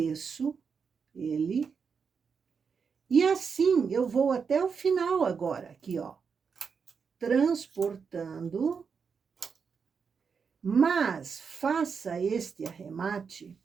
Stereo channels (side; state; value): left; quieter; 5.9 dB